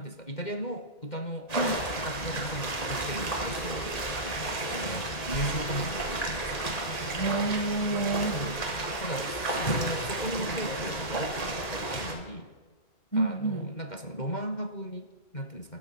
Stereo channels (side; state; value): right; late; 1.9 ms